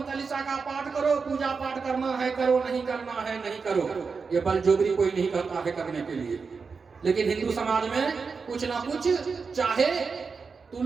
चालीसा का पाठ करो, पूजा पाठ करना है करो, नहीं करना है नहीं करो। ये बलजोबरी कोई नहीं करता है करने के लिए, लेकिन हिंदू समाज में कुछ ना कुछ, चाहे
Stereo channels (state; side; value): quieter; left; 5.0 dB